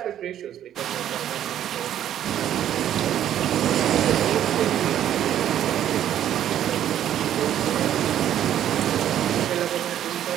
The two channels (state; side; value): quieter; left; 11.0 dB